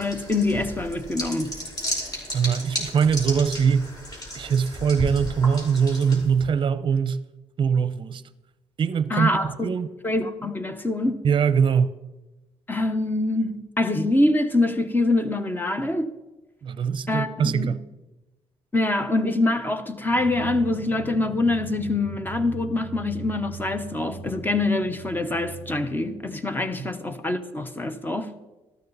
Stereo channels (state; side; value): normal; both; correlation 0.74